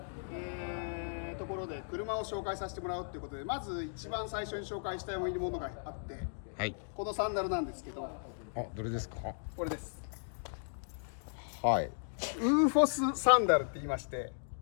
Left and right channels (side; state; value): right; silent; digital silence